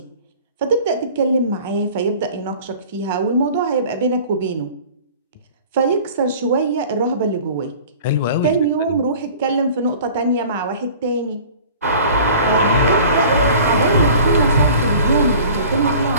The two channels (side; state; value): both; inverted; correlation -0.45